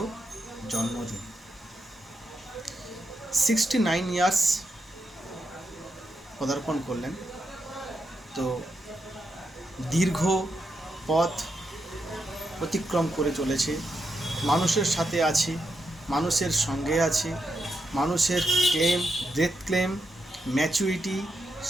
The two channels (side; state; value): both; normal; correlation 0.84